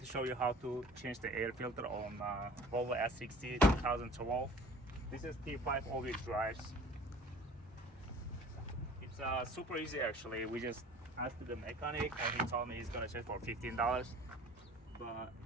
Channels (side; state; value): both; normal; correlation 0.46